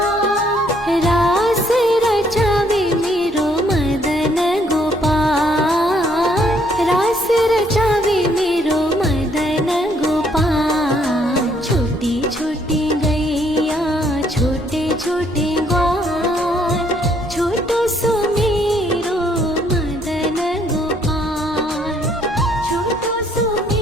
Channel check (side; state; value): both; normal; correlation 0.67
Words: रास रचावे मेरो मदन गोपाल, रास रचावे मेरो मदन गोपाल। छोटी छोटी गैया छोटे छोटे ग्वाल, छोटो सो मेरो मदन गोपाल, छोटो सो